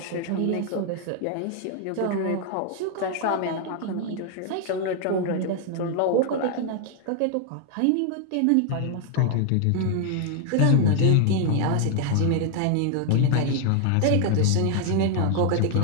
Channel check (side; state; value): both; different; correlation 0.00